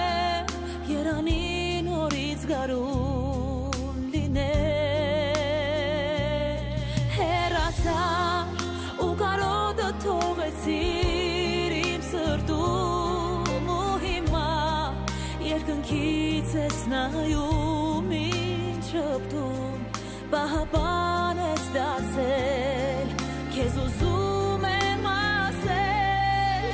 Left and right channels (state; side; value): identical; both; correlation 1.00